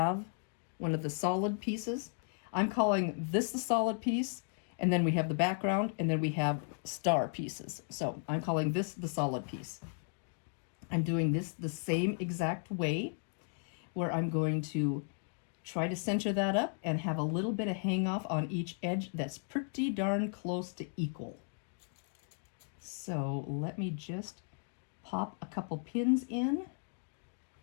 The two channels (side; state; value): right; silent; 54 dB below the other